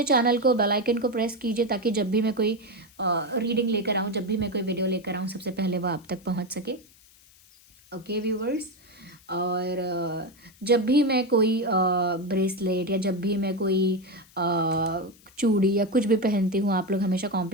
चैनल को, बेल आइकन को प्रेस कीजिए, ताकि जब भी मैं कोई रीडिंग लेकर आऊँ, जब भी मैं कोई वीडियो लेकर आऊँ, सबसे पहले वो आप तक पहुँच सके। ओके व्यूअर्स, और जब भी मैं कोई ब्रेसलेट, या जब भी मैं कोई चूड़ी या कुछ भी पहनती हूँ, आप लोग हमेशा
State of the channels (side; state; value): left; noise; hiss, 27 dB below the sound